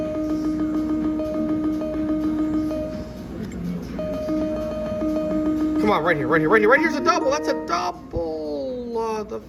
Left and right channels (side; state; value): both; identical; correlation 1.00